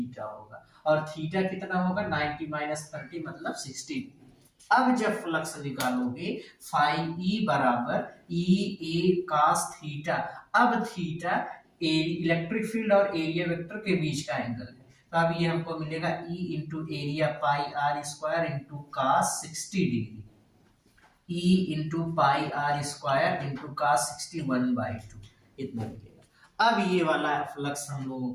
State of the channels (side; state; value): both; identical; correlation 1.00